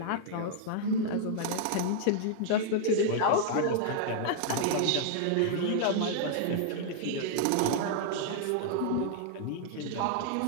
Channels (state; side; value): different; both; correlation -0.01